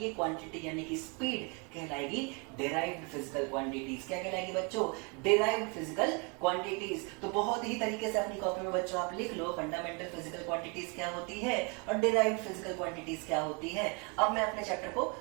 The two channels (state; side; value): quieter; left; 32.7 dB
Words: ये क्वांटिटी यानी कि स्पीड कहलाएगी डिराइव्ड फिजिकल क्वांटिटीज. क्या कहलाएगी बच्चों? Derived physical quantities. तो बहुत ही तरीके से अपनी कॉपी में बच्चों आप लिख लो फंडामेंटल फिजिकल क्वांटिटीज क्या होती है और डिराइव्ड फिजिकल क्वांटिटीज क्या होती है. अब मैं अपने चैप्टर को